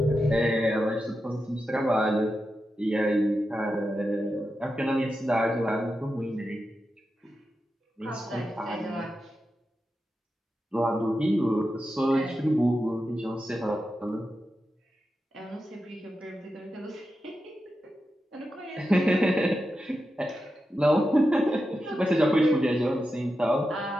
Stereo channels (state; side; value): normal; both; correlation 0.90